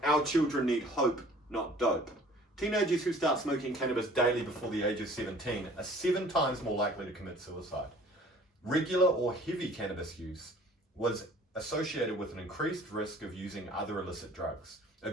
Our children need hope, not dope. Teenagers who start smoking cannabis daily before the age of 17 are 7 times more likely to commit suicide. Regular or heavy cannabis use was associated with an increased risk of using other illicit drugs,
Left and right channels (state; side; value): normal; both; correlation 0.51